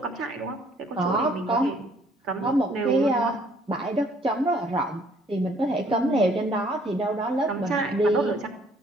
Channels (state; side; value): normal; both; correlation 0.62